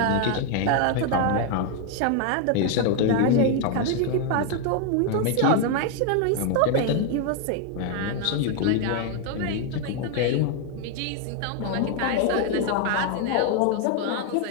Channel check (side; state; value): both; different; correlation 0.01